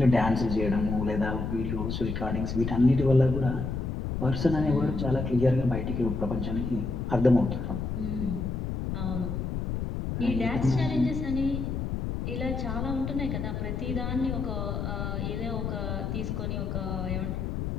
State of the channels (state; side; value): noise; left; rumble, 3 dB below the sound